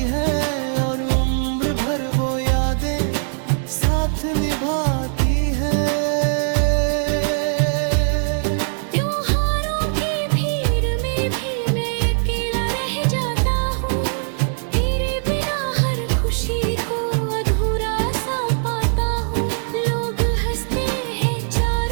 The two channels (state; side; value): silent; left; digital silence